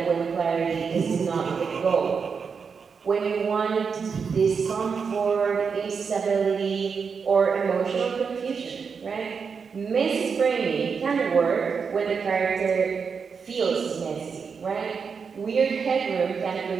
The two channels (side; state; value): left; quieter; 5.8 dB